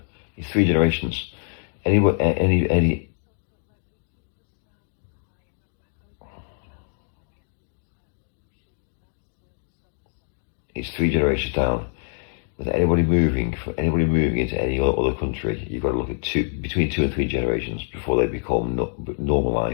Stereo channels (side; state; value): right; silent; digital silence